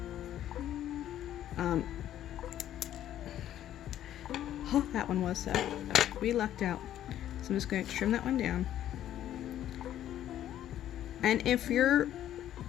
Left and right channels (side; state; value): right; quieter; 11.8 dB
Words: Oh, that one was, so we lucked out. So I'm just going to trim that one down. And if you're